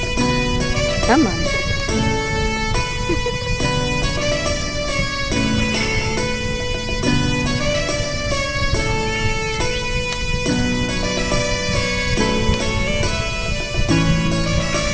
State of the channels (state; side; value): identical; both; correlation 1.00